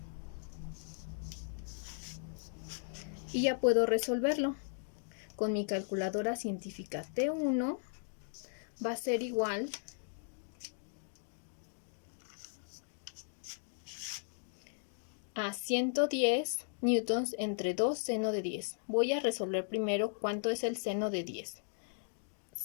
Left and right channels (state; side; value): silent; right; digital silence